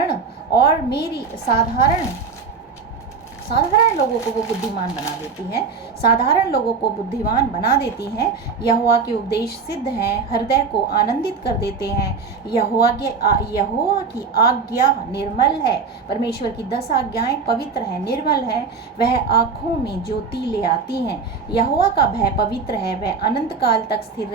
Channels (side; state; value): left; quieter; 5.1 dB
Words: लोगों को वो बुद्धिमान बना देती हैं, साधारण लोगों को बुद्धिमान बना देती हैं। यहोवा के उपदेश सिद्ध हैं, हृदय को आनंदित कर देते हैं। यहोवा की आज्ञा निर्मल है। परमेश्वर की 10 आज्ञाएं पवित्र हैं, निर्मल हैं, वह आँखों में ज्योति ले आती हैं। यहोवा का भय पवित्र है, वह अनंत काल तक स्थिर